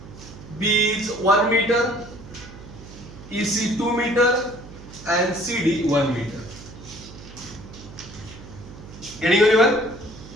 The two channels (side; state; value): right; noise; hum, 16 dB below the sound